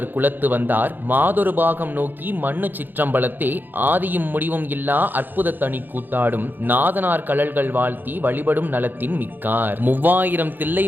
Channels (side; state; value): left; late; 0.090 ms